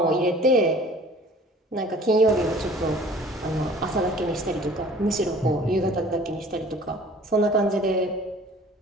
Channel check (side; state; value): both; normal; correlation 0.49